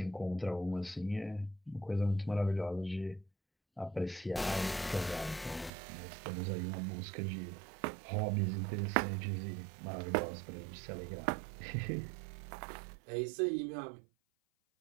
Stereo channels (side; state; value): left; drops out; at 5.7 s